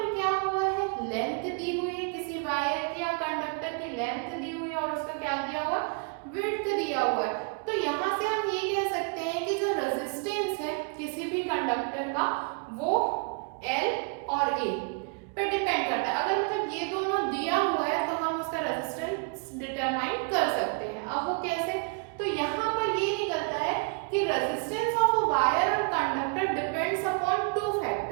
क्या हुआ है, लेंथ दी हुई है, किसी वायर की या कंडक्टर की लेंथ दी हुई है और उसका क्या दिया हुआ, विड्थ दिया हुआ है। तो यहाँ से हम ये कह सकते हैं कि जो रेजिस्टेंस है किसी भी कंडक्टर का वो L और A पे डिपेंड करता है। अगर मतलब ये दोनों दिया हुआ है तो हम उसका रेजिस्टेंस डिटरमाइन कर सकते हैं। अब वो कैसे, तो यहाँ पर ये निकलता है कि रेजिस्टेंस ऑफ अ वायर और conductor depends upon two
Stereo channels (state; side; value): quieter; left; 36.1 dB